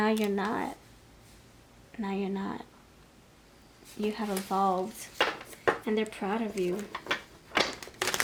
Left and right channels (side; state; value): both; identical; correlation 1.00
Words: you're not. Now you're not. You have evolved, and they're proud of you.